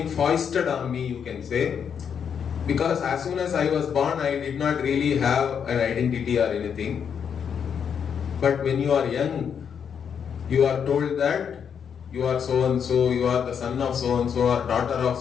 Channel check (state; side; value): quieter; right; 7.4 dB